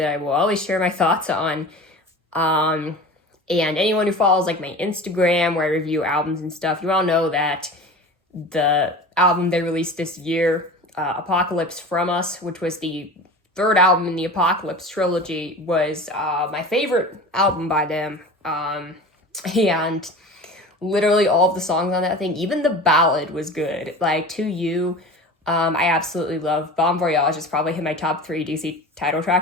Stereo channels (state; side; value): normal; both; correlation 0.35